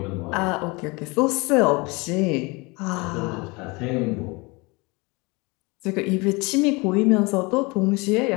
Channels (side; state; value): right; quieter; 26.4 dB